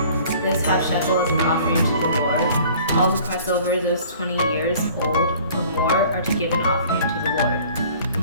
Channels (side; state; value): both; inverted; correlation -0.50